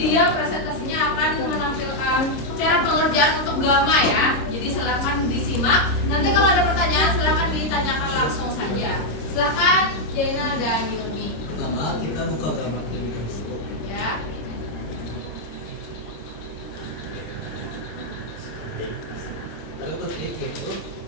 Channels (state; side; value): late; right; 26 ms